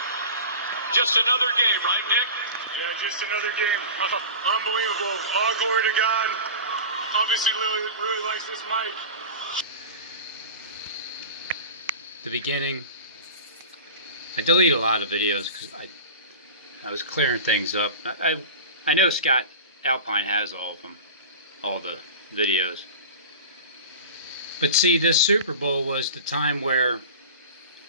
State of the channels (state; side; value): inverted; both; correlation -0.33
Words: Just another game, right, Nick? Yeah, just another game. Unbelievable. All glory to God. Obviously, really likes this mic. The beginning. I delete a lot of videos because I was clearing things up. I know Scott Alpine has all of them, all the videos. But see, this Super Bowl was the time where